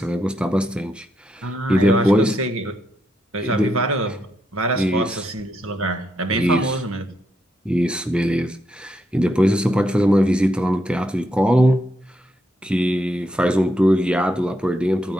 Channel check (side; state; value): both; normal; correlation 0.80